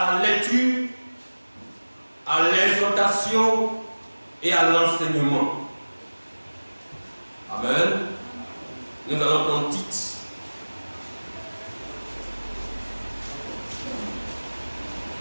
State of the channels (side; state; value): both; inverted; correlation -1.00